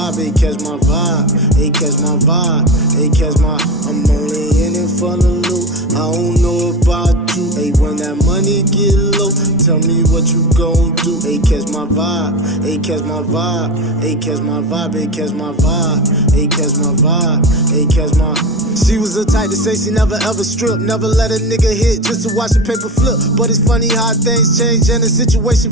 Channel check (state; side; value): normal; both; correlation 0.25